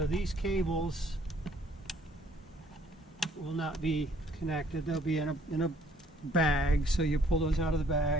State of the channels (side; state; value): both; normal; correlation 0.62